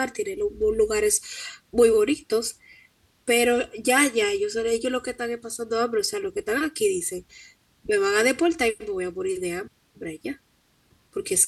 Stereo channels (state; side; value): identical; both; correlation 1.00